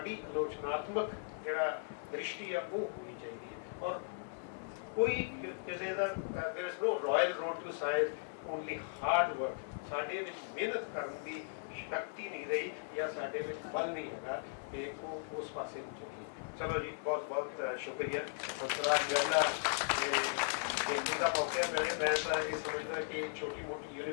ਆਲੋਚਨਾਤਮਕ ਜਿਹੜਾ ਦ੍ਰਿਸ਼ਟੀ ਆ ਉਹ ਹੋਣੀ ਚਾਹੀਦੀ ਹੈ। ਔਰ ਕੋਈ ਕਿਸੇ ਦਾ there is no royal road to science, only hard work। ਸਾਡੇ ਵਿੱਚ ਮਿਹਨਤ ਕਰਨ ਦੀ ਸ਼ਕਤੀ ਨਹੀਂ ਰਹੀ ਜਾਂ ਸਾਡੇ ਵਿੱਚ ਬਲ ਨਹੀਂ ਹੈਗਾ ਕਿ ਉਹ ਉਸ ਪਾਸੇ ਨੂੰ ਚੱਲੀਏ। ਚਲੋ ਜੀ, ਬਹੁਤ ਬਹੁਤ ਸ਼ੁਕਰੀਆ। ਹੰਸਰਾਜ ਜੈਲਾ ਦਾ ਮੌਕਾ ਮਿਲੇ। ਮੈਂ ਤਾਂ ਇਹ ਸਮਝਦਾ ਕਿ ਛੋਟੀ ਮੋਟੀ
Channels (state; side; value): silent; right; 53 dB below the other